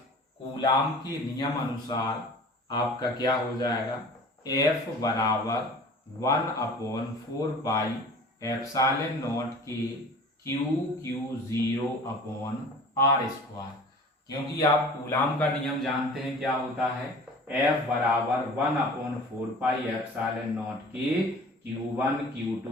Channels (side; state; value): both; normal; correlation 0.43